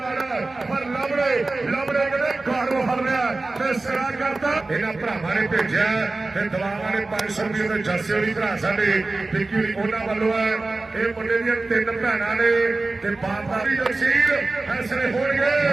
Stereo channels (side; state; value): left; quieter; 3.3 dB